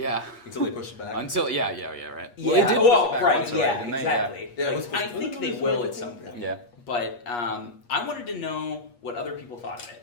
Until they push it back. Until right. Yeah. Well, they did push Well, it back right. once already, Yeah. didn't they? Exactly. Yeah, it Like, was supposed I to- think they was will it at some point. Yeah. But I wanted to know what other people thought of it,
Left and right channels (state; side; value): late; right; 8.4 ms